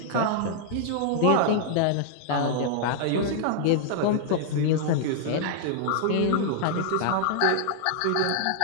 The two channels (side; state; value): both; different; correlation -0.01